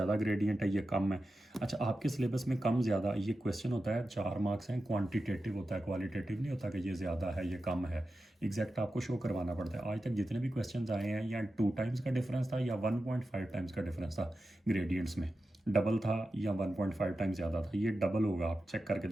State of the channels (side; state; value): both; normal; correlation 0.92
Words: ग्रेडियंट है, ये कम है। अच्छा, आपके सिलेबस में कम ज़्यादा ये क्वेश्चन होता है, 4 मार्क्स हैं, क्वांटिटेटिव होता है, क्वालिटेटिव नहीं होता कि ये ज़्यादा है ये कम है, एग्जैक्ट आपको शो करवाना पड़ता है। आज तक जितने भी क्वेश्चन आए हैं या 2 टाइम्स का डिफरेंस था या 1.5 टाइम्स का डिफरेंस था ग्रेडियंट्स में, डबल था या 1.5 टाइम्स ज़्यादा था, ये डबल होगा, आप चेक करके